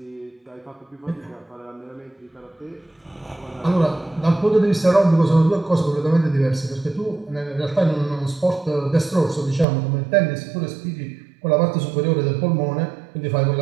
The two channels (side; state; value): left; drops out; at 9.7 s